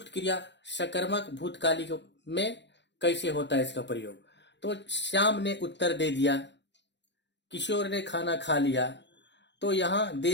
क्रिया सकर्मक भूतकालिक में कैसे होता है इसका प्रयोग। तो श्याम ने उत्तर दे दिया, किशोर ने खाना खा लिया, तो यहाँ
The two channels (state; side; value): late; right; 0.52 ms